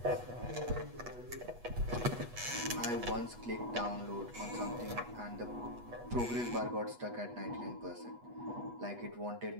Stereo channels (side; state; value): left; late; 8.2 ms